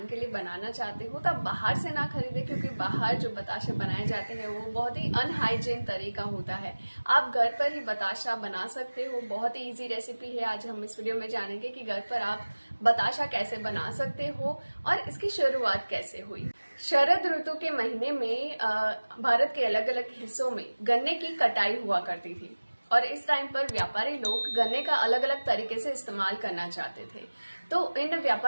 के लिए बनाना चाहते हो तो आप बाहर से ना खरीदें, क्योंकि बाहर जो बताशे बनाए जाते हैं वो बहुत ही अनहाइजीन तरीका होता है। आप घर पर ही बताशा बना सकते हो। बहुत ही इजी रेसिपी है। आज हम इस वीडियो में जानेंगे कि घर पर आप बताशा कैसे बना सकते हो और इसकी शुरुआत कैसे हुई। शरद ऋतु के महीने में भारत के अलग अलग हिस्सों में गन्ने की कटाई हुआ करती थी और इस टाइम पर व्यापारी लोग गन्ने का अलग अलग तरीके से इस्तेमाल करना चाहते थे। तो इन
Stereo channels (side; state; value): both; inverted; correlation -1.00